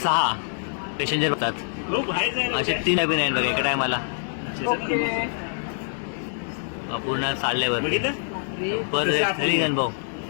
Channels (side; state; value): right; silent; 62 dB below the other